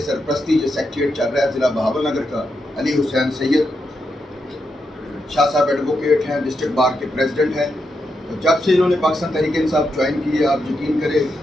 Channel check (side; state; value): both; normal; correlation 0.84